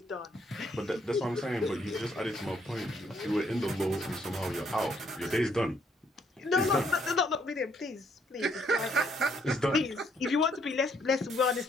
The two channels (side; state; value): both; normal; correlation 0.69